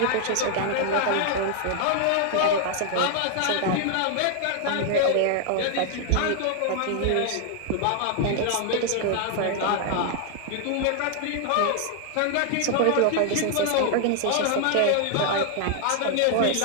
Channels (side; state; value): both; different; correlation 0.00